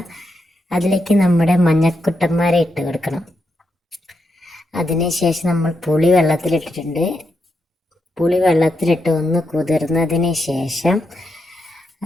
അതിലേക്ക് നമ്മുടെ മഞ്ഞക്കുട്ടന്മാരെ ഇട്ട് കൊടുക്കണം. അതിനുശേഷം നമ്മൾ പുളി വെള്ളത്തിലിട്ടിട്ടുണ്ട്. പുളി വെള്ളത്തിലിട്ട് ഒന്ന് കുതിർന്നതിന് ശേഷം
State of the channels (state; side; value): normal; both; correlation 0.83